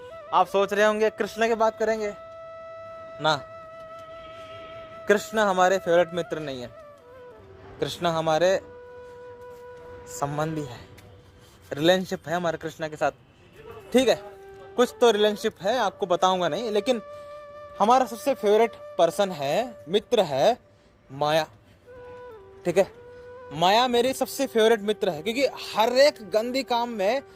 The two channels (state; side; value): identical; both; correlation 1.00